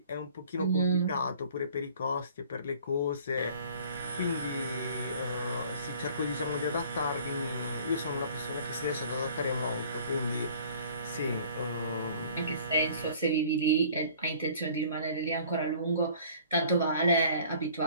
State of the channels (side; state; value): both; inverted; correlation -0.52